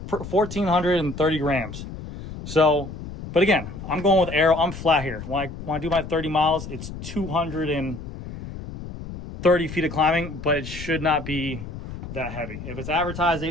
grams. So, but again, I'm going with aero. I'm flat here. When I do my 30 miles, it's 230 feet of climbing, but it should not be that heavy. If it's advertised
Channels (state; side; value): noise; left; rumble, 10 dB below the sound